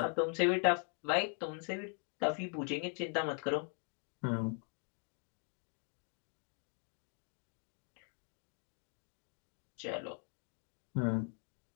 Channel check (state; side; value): quieter; right; 39.1 dB